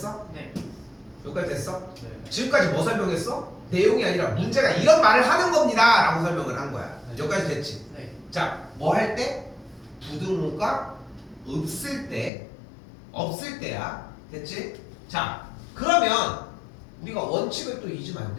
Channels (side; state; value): right; drops out; at 12.3 s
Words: 네. 여기까지 됐어? 네. 지금까지 뭐 설명했어? 내용이 아니라 문제가 이런 말을 하는 겁니다 라고 설명을 한 거야. 네. 여기까지 됐지? 네. 자, 뭐 할 때? 부등호가 없을 때야. 됐지? 자, 그러면 우리가 원칙을 또 잊으면 안